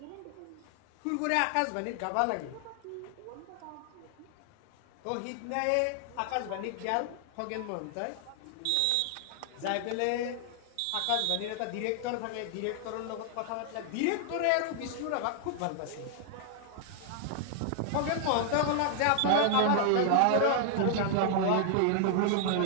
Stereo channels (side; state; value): both; different; correlation 0.00